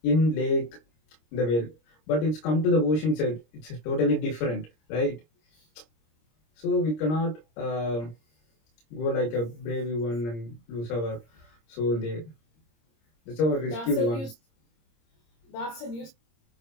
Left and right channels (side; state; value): right; late; 26 ms